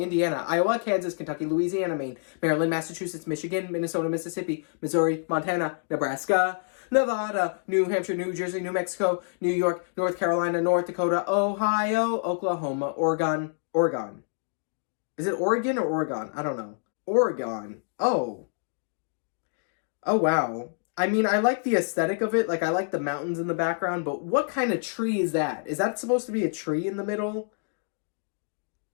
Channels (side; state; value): right; silent; digital silence